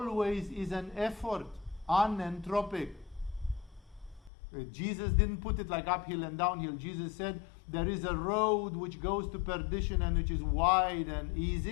is an effort, unentropic. Jesus didn't put it like uphill and downhill. Jesus said there is a road which goes to perdition and which is wide and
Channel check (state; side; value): drops out; right; at 4.3 s